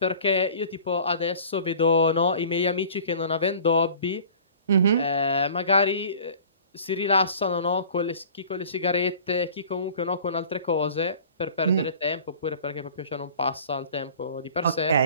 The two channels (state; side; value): inverted; both; correlation -0.46